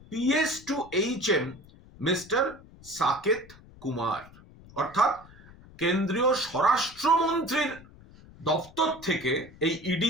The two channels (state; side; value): noise; left; rumble, 22 dB below the sound